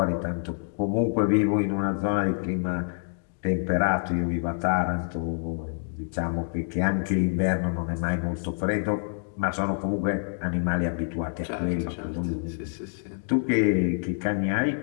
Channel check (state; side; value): silent; right; digital silence